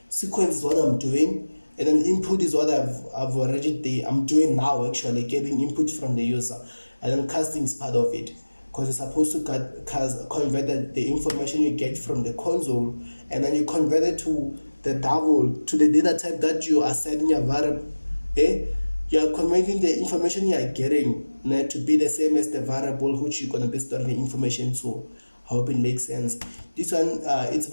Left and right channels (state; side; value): inverted; both; correlation -1.00